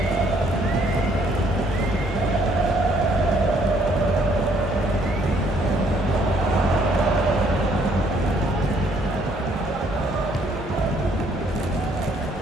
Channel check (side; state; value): both; normal; correlation 0.66